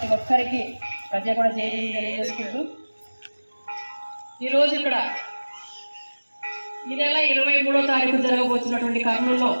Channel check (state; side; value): inverted; both; correlation -1.00